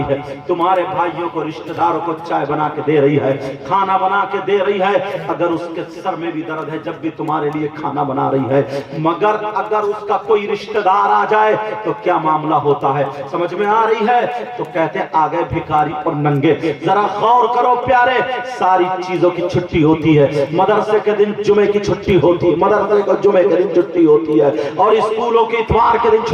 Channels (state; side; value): identical; both; correlation 1.00